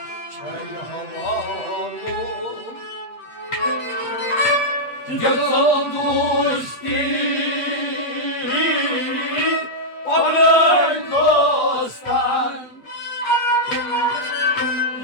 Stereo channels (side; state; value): right; late; 8.2 ms